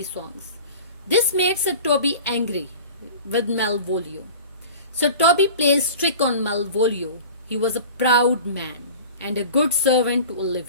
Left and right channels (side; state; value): both; inverted; correlation -0.39